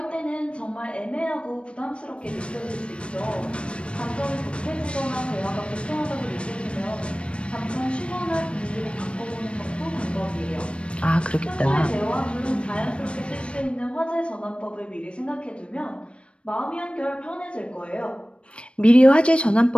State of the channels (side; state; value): right; late; 0.059 ms